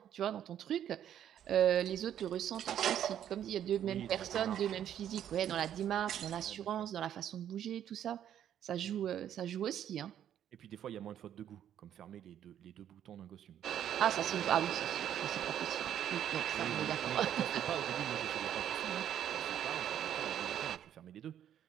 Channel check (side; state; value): left; quieter; 10.3 dB